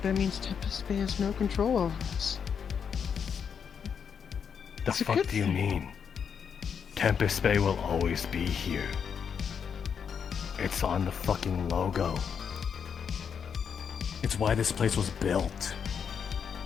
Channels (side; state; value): right; quieter; 7.1 dB